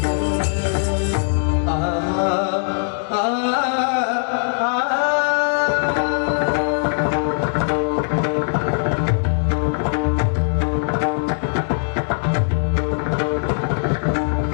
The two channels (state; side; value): silent; right; digital silence